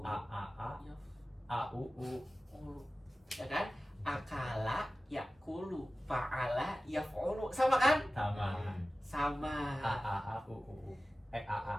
a a a yaf a u u. ulu. Ya kan? Akala yakulu, fa'ala yaf'ulu. Sama kan? Sama. Sama. A a a u u u.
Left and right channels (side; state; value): both; normal; correlation 0.96